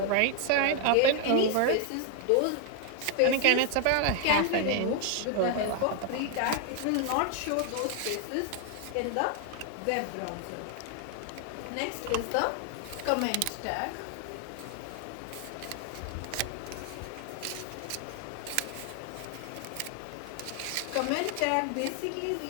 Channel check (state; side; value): different; both; correlation 0.00